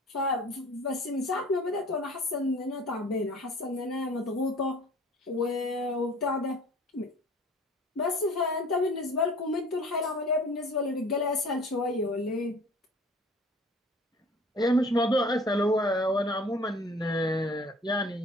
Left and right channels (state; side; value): normal; both; correlation 0.47